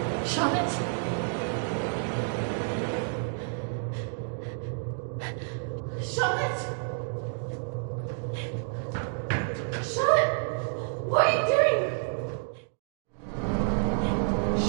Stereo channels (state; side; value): silent; left; 58 dB below the other